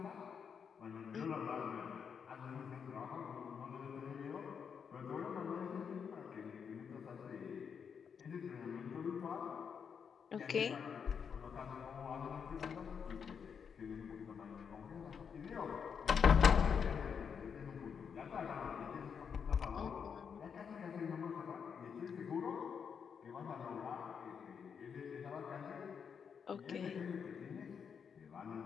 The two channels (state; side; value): quieter; right; 6.8 dB